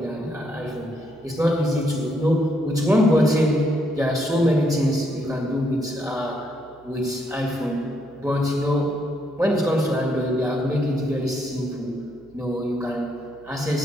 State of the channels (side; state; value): right; noise; hum, 28 dB below the sound